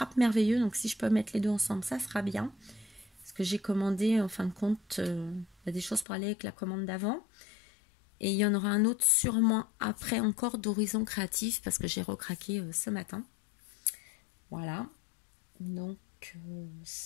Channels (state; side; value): drops out; right; at 6.1 s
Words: Merveilleux. Donc si je peux mettre les deux ensemble, ça sera bien. Parce que j'ai commandé en fin de compte des choses pour aller avec la commande d'avant. Et il y en aura un autre sûrement après encore d'Horizon Créatif parce que j'ai recraqué ce matin. Voilà. Donc